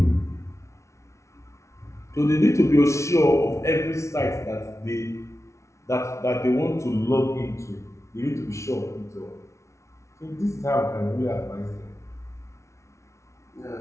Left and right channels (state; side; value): late; right; 0.14 ms